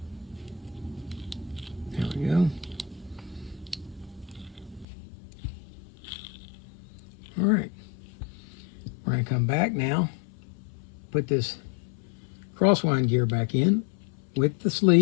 There we go. All right. We're going to come back now, put this crosswind gear back in with the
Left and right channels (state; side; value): drops out; right; at 4.9 s